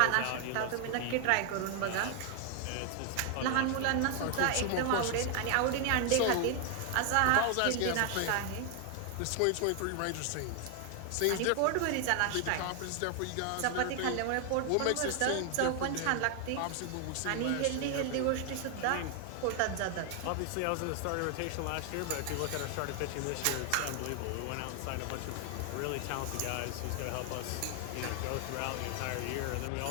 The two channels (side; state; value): both; different; correlation 0.00